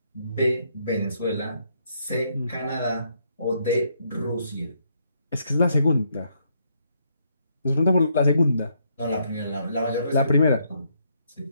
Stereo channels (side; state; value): both; inverted; correlation -0.74